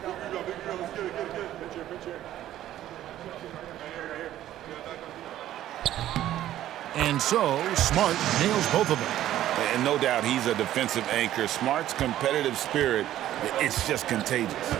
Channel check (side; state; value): left; quieter; 12.9 dB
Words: And so, Smart nails both of them. And no doubt he's a defensive anchor. Smart's competitive spirit, it's just contagious.